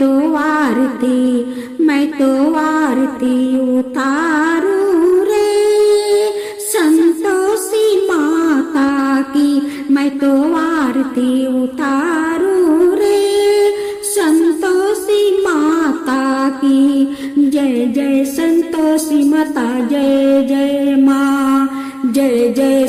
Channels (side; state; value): both; identical; correlation 1.00